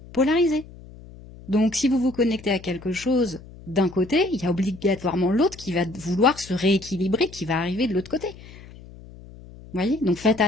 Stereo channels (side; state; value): left; noise; hum, 19 dB below the sound